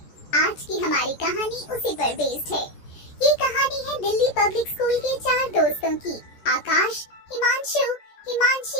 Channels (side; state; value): right; late; 14 ms